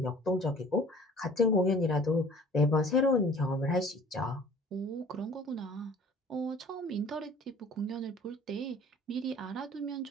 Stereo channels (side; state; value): both; normal; correlation 0.49